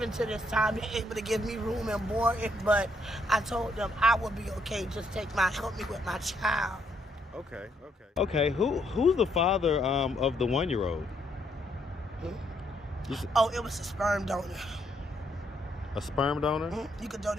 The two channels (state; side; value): normal; both; correlation 0.73